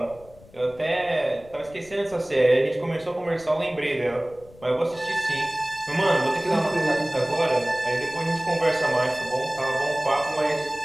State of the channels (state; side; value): noise; left; rumble, 23 dB below the sound